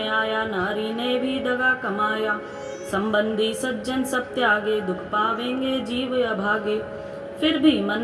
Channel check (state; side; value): identical; both; correlation 1.00